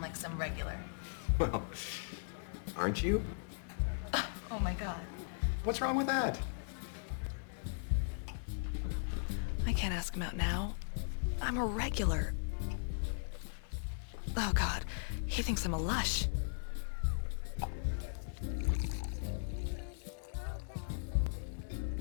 like some regular. Well, aren't you? Oh my god. What's wrong with that? I can't ask him out now. I'm a regular. Oh god, he thinks I'm a lush.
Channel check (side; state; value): right; silent; digital silence